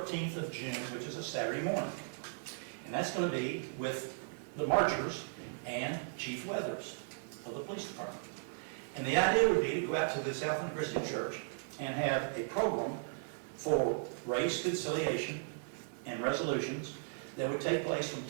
of June, which is a Saturday morning. And that's going to be with the marchers and Chief Weathers of the police department. And the idea would be to go out to the Southland Christian Church and have a program for race conciliation and resolutions that would take place from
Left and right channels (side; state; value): left; silent; digital silence